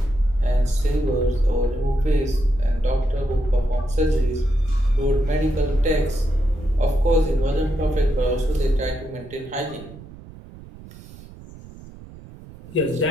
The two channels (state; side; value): noise; right; rumble, 18 dB below the sound